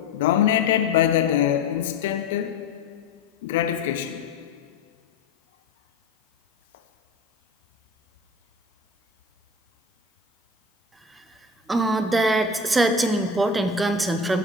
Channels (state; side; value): quieter; right; 3.2 dB